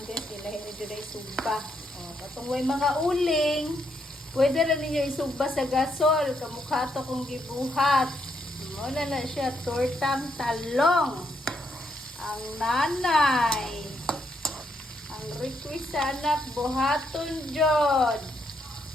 guys. Kailangan nyo na isugba. Katong way mga uling. Pwede rin ninyo isugba sa gasol. Kamukha to kong gibuhat. Muna na siya. Tortang talong. Ang nanay. Ang request sa anak, buhaton jod.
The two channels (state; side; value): normal; both; correlation 0.77